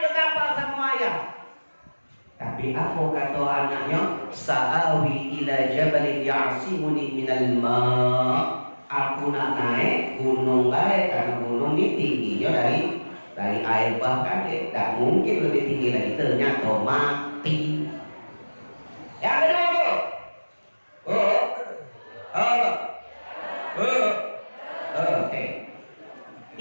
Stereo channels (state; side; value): inverted; both; correlation -1.00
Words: ke kapal sama ayah. Tapi apa kata anaknya? Sa'awi ila jabalin ya'simuni minal ma'. Aku nak naik gunung baik, karena gunung ini tingginya dari air bahkan tidak mungkin lebih tinggi lagi, ternyata mati. Yang kedua oke.